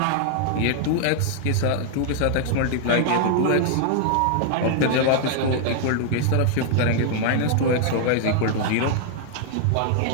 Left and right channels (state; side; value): different; both; correlation 0.00